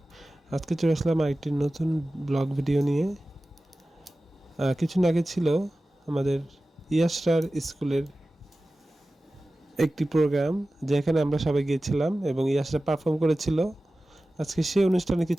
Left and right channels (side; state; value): both; normal; correlation 0.96